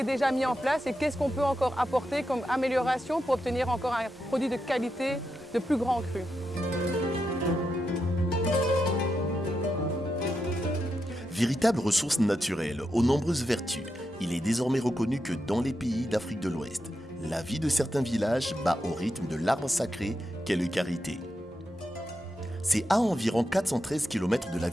déjà mis en place et qu'est-ce qu'on peut encore apporter comme amélioration pour obtenir encore un produit de qualité de plus grand cru. Véritable ressource naturelle aux nombreuses vertus, il est désormais reconnu que dans les pays d'Afrique de l'Ouest, la vie de certains villages bat au rythme de l'arbre sacré qu'est le karité. C'est à environ 413 km de la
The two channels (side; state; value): both; normal; correlation 0.86